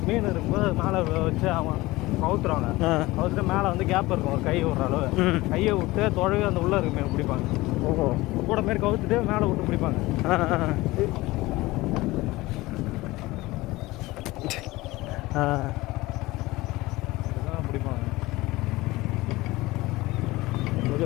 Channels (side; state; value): right; quieter; 19.8 dB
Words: மீன் இருக்கும்போது மேலே வச்சு அவன் கவுத்துருவாங்க. கவுத்துட்டு மேலே வந்து கேப் இருக்கும் ஒரு கை விடுற அளவு. கையை விட்டு தொழவி அந்த உள்ளே இருக்கு மீன் பிடிப்பாங்க. ஓஹோ கூட மாரி கவுத்துட்டு மேலே விட்டு பிடிப்பாங்க. இதுதான் பிடிப்பாங்க.